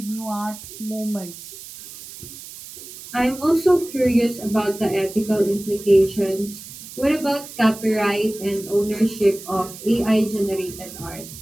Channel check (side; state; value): right; noise; hiss, 14 dB below the sound